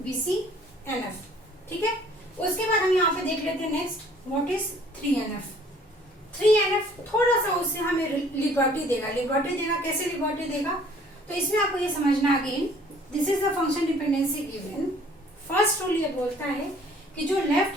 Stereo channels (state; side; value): normal; both; correlation 0.56